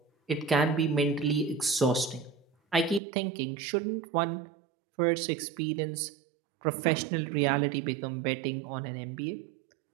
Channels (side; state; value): left; drops out; at 3.0 s